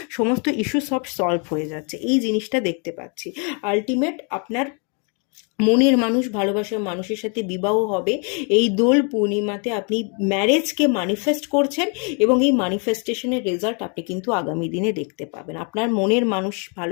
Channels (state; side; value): quieter; right; 37.2 dB